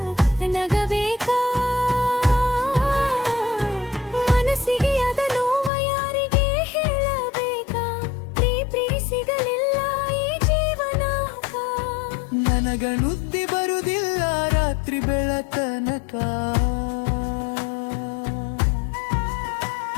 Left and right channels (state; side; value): drops out; right; at 5.7 s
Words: ನಗಬೇಕ ಮನಸ್ಸಿಗೆ ಅದ ನೋವ ಯಾರಿಗೆ ಹೇಳಬೇಕ ಪ್ರೀ ಸಿಗಲಿಲ್ಲ ಈ ಜೀವನಕ ನನಗ ನುದ್ದಿ ಬರುದಿಲ್ಲ ರಾತ್ರಿ ಬೆಳತನಕ